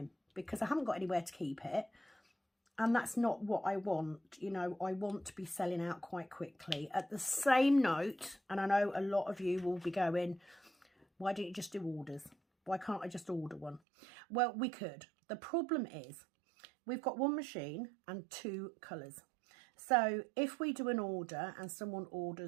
because I haven't got anywhere to keep it. And that's not what I want. You know, I want to be selling out quite quickly. At the same note, and I know a lot of you will be going, why don't you just do orders? Why can't I just order one? Well, we could. The problem is we've got 1 machine and 2 colours. So if we do an order and someone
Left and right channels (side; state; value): left; drops out; at 13.8 s